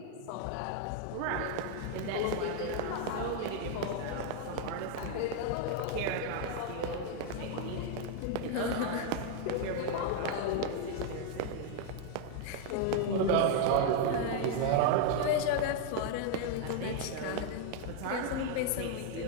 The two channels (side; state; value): both; different; correlation 0.00